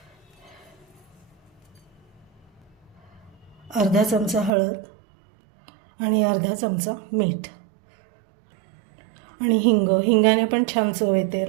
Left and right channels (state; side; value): drops out; left; at 4.5 s